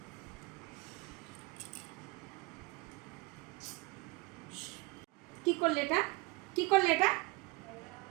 কি করলে এটা? কি করলে এটা?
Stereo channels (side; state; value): left; quieter; 23.2 dB